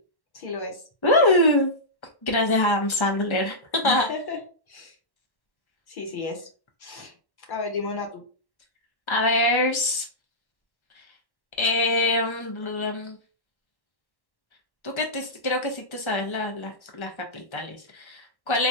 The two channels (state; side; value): late; right; 1.3 ms